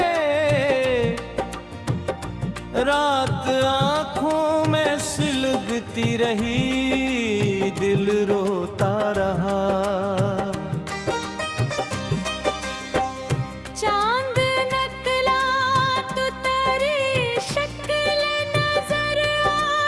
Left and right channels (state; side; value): identical; both; correlation 1.00